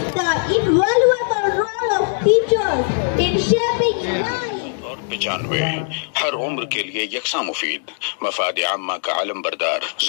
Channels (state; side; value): silent; right; digital silence